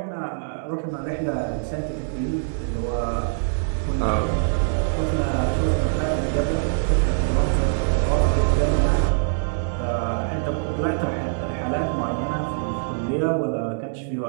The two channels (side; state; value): left; silent; digital silence